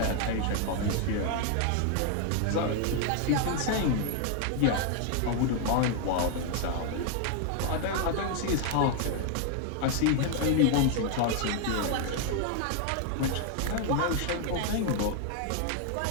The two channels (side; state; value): both; different; correlation 0.00